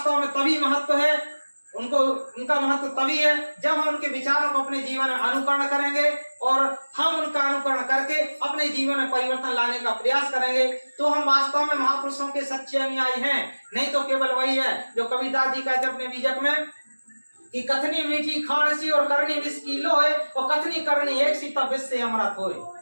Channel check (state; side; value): inverted; both; correlation -1.00